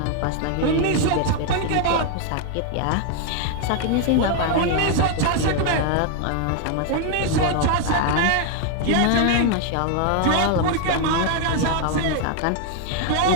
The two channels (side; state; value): both; different; correlation 0.00